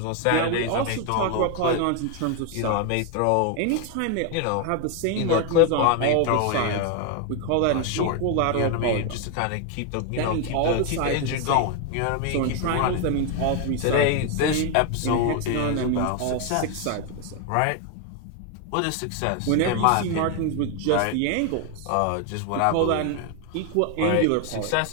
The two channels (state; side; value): different; both; correlation 0.01